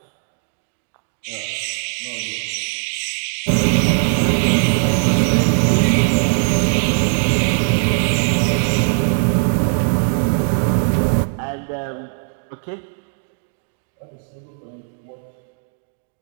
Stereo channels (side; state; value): left; silent; 59 dB below the other